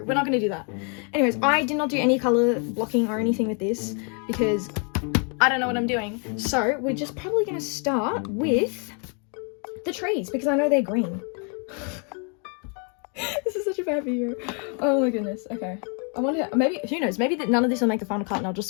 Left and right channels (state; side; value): quieter; right; 38.1 dB